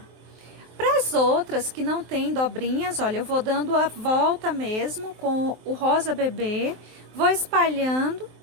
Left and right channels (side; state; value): left; late; 23 ms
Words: Para as outras que não tem dobrinhas, olha, eu vou dando a volta mesmo com o rosa bebê, Vou espalhando,